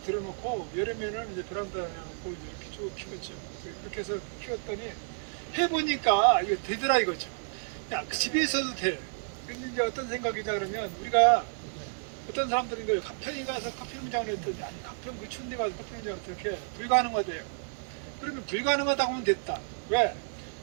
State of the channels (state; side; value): silent; left; 57 dB below the other